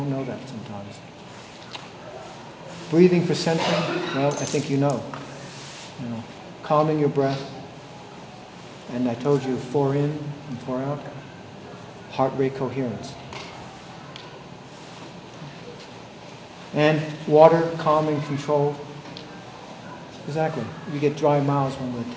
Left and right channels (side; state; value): both; identical; correlation 1.00